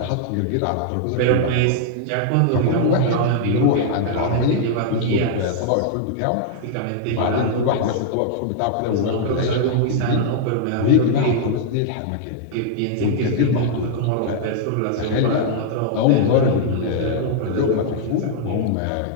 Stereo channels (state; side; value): different; both; correlation -0.01